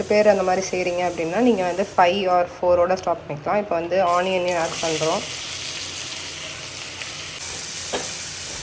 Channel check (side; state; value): both; identical; correlation 1.00